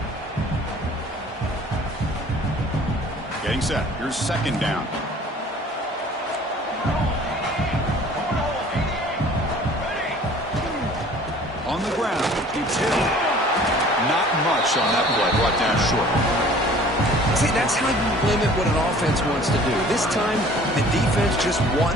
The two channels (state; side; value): normal; both; correlation 0.50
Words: Getting set. Here's second down. On the ground, it's Hill. Not much on that play. Brought down short. See, that's how you limit what an offense wants to do. This time, the defense just won